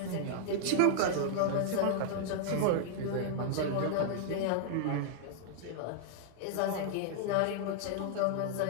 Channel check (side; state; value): both; different; correlation -0.01